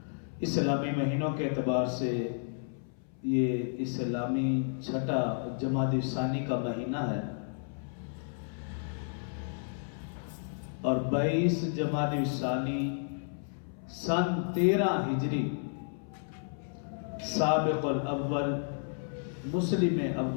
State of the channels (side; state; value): right; silent; 56 dB below the other